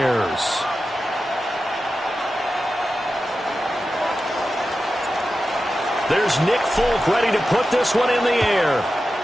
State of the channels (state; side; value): normal; both; correlation 0.92